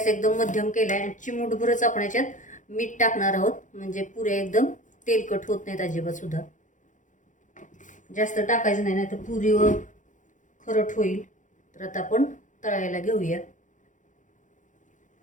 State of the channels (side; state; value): right; late; 0.37 ms